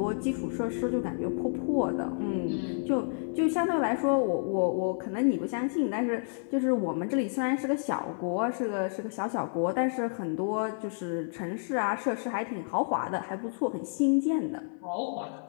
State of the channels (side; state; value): right; silent; digital silence